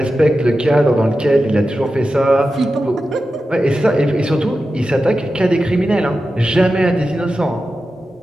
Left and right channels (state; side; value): normal; both; correlation 0.92